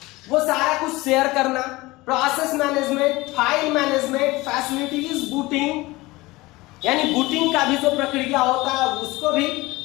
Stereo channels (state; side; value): quieter; right; 20.9 dB